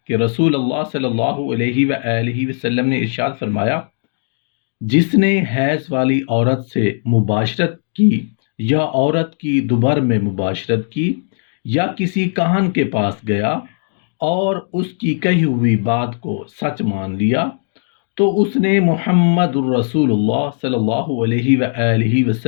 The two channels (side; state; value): right; silent; digital silence